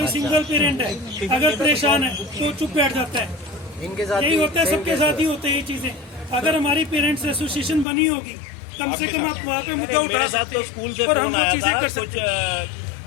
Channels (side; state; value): right; drops out; at 7.9 s